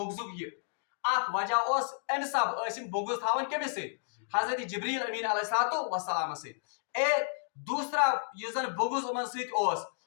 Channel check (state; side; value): silent; right; digital silence